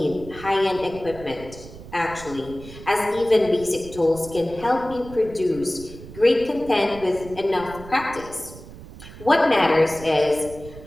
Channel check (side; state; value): right; noise; rumble, 16 dB below the sound